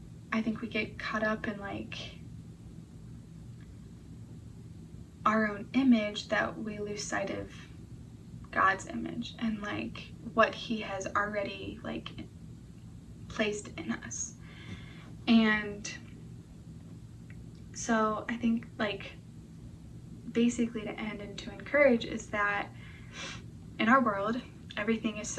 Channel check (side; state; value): both; identical; correlation 1.00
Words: I think we get caught up in like our own image that we lose sight of God's image and like what he has already like placed in us. And so I think like, basically to end and to encourage is that in our world, everything is